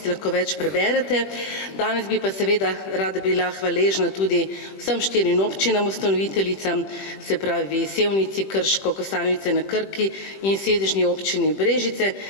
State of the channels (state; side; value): late; right; 20 ms